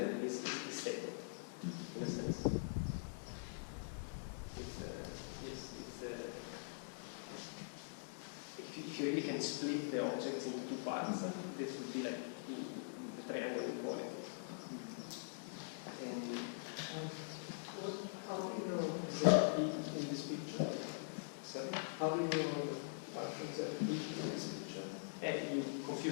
stable in a sense. If you really can split the objects into two parts, this would be like the triangle equality. And how do you know that in this picture? Sorry? How do you know the functions that in this picture? And you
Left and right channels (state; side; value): silent; right; digital silence